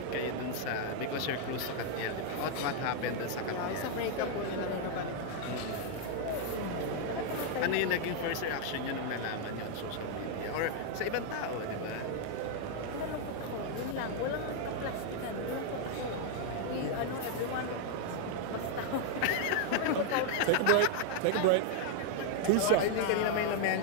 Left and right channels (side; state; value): both; different; correlation 0.00